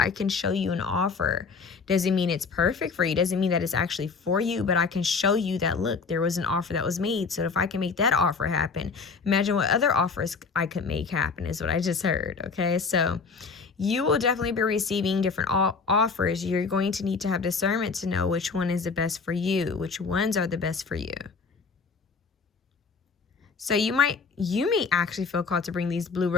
can show you an offer. Doesn't mean it's perfect for you. Doesn't mean that it's actually for you, but I can show you that, look, there was an offer that was made. So if I can make that offer happen, imagine what other offers I could make happen, is what I just heard. Okay, so you will definitely be receiving different offers. You're going to need to have discernment to know which one is the best for you, which ones are the best for you. So you may actually feel called to bring these blue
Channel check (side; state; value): right; quieter; 4.9 dB